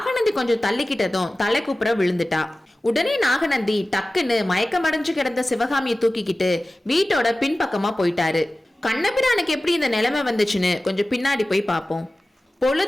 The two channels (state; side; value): normal; both; correlation 0.96